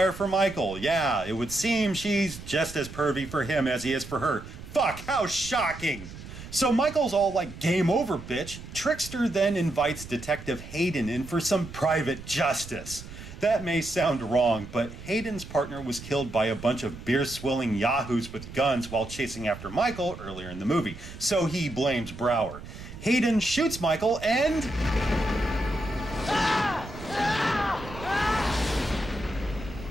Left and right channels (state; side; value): noise; right; rumble, 13 dB below the sound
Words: for Michael. Yeah, it would seem she's just as pervy for him as he is for her. Fuck, how shocking! So Michael's all like, game over, bitch. Trickster then invites Detective Hayden in for some private justice. That may sound wrong, but Hayden's partner was killed by a bunch of beer-swilling yahoos with guns while chasing after Michael earlier in the movie, so he blames Brower. Hayden shoots Michael and...